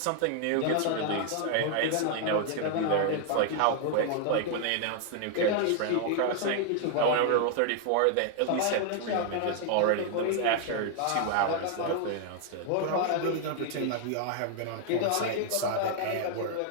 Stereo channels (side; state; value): both; different; correlation 0.00